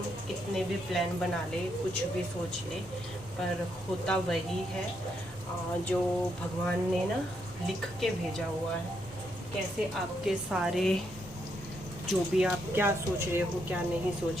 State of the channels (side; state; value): both; normal; correlation 0.78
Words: कितने भी प्लान बना ले, कुछ भी सोच ले, पर होता वही है जो भगवान ने ना लिख के भेजा हुआ है। कैसे आपके सारे जो भी आप क्या सोच रहे हो क्या नहीं